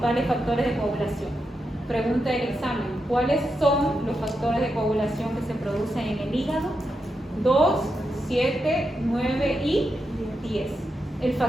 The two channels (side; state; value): both; normal; correlation 0.86